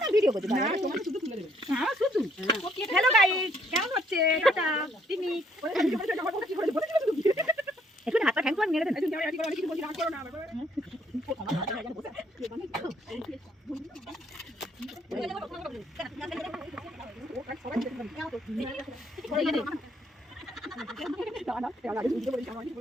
ভিডিও করতে পারে। তোমার শুধু তুলে দেবে। হ্যাঁ শুধু। হ্যালো গাইস, কেমন হচ্ছে? টাটা। টিমি। একটু হাত পা ঠ্যাং করে মেরে দেন। তুমি যাও, আজকে কিছু বলছি, রাগ করো না।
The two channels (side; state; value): both; normal; correlation 0.67